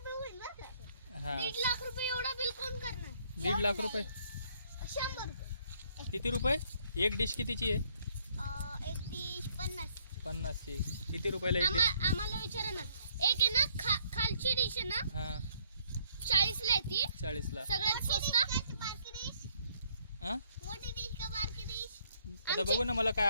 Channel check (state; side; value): inverted; both; correlation -0.65